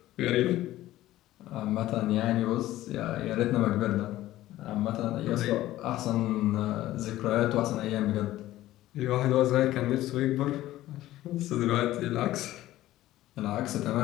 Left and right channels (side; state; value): right; quieter; 15.1 dB